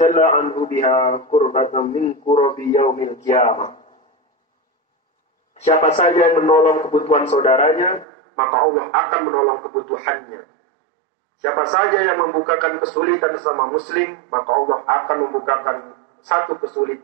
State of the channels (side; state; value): left; drops out; at 8.1 s